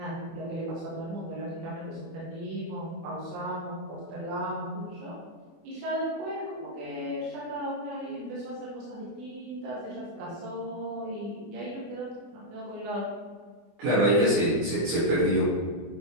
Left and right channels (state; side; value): late; left; 24 ms